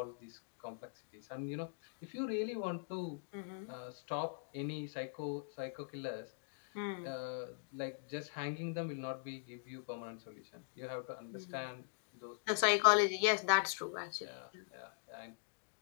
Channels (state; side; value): silent; right; digital silence